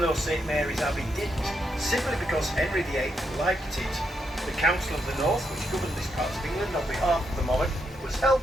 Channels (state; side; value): normal; both; correlation 0.80